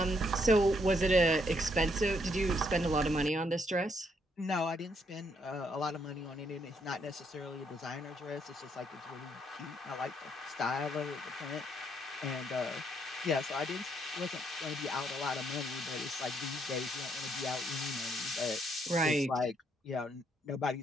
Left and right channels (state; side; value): normal; both; correlation 0.72